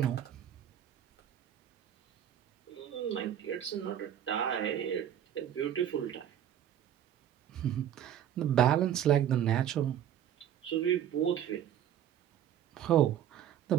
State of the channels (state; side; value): quieter; left; 10.3 dB